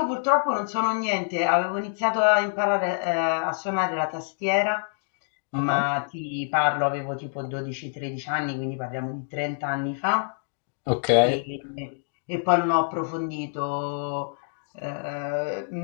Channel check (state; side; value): silent; right; digital silence